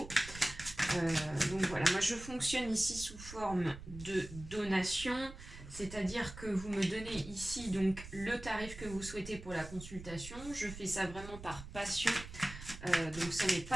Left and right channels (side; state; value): right; noise; rumble, 13 dB below the sound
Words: Donc voilà, moi je fonctionne ici sous forme de donation, c'est-à-dire que vous me donnez ici donc le tarif que vous souhaitez pour la consultation. Je fais ça vraiment par passion, donc ce n'est